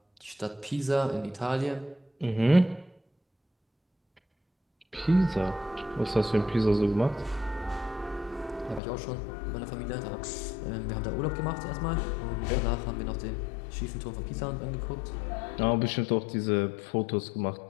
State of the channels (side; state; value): right; drops out; at 8.8 s